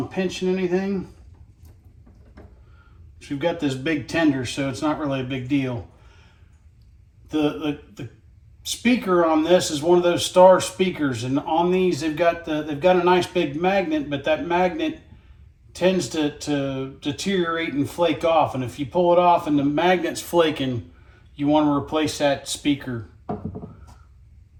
pinching anything. So we've got this big tender, so it's not really a big deal. The speaker on this is one of those star speakers, and on these they've got a nice big magnet, but that magnet tends to deteriorate and flake off, and if you pull it off and the magnet's flaking, you want to replace that speaker.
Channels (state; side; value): identical; both; correlation 1.00